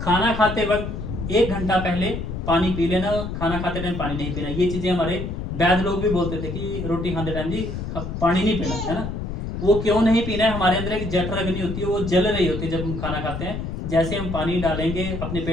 खाना खाते वक्त 1 घंटा पहले पानी पी लेना, खाना खाते टाइम पानी नहीं पीना। ये चीजें हमारे वैद्य लोग भी बोलते थे कि रोटी खाते टाइम जी पानी नहीं पीना है ना। वो क्यों नहीं पीना है, हमारे अंदर एक जठर अग्नि होती है, वो जल रही होती है जब हम खाना खाते हैं। जैसे हम पानी डालेंगे अपने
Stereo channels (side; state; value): left; noise; rumble, 5 dB below the sound